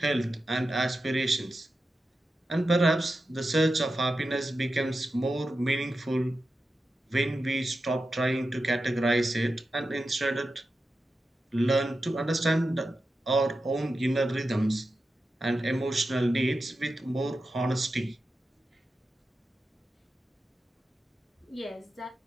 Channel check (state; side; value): normal; both; correlation 0.91